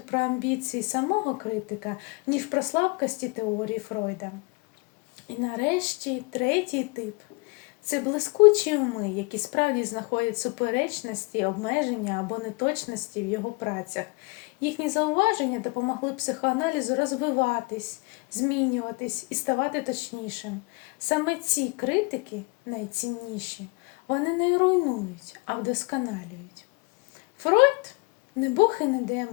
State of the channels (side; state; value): right; quieter; 28.4 dB